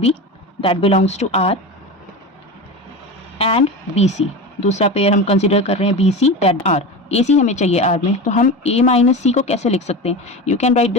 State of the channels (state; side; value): normal; both; correlation 0.26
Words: that belongs to R and B C, दूसरा पेयर हम कंसिडर कर रहे हैं B C that R, A C हमें चाहिए आर में। तो हम ए माइनस सी को कैसे लिख सकते हैं, you can write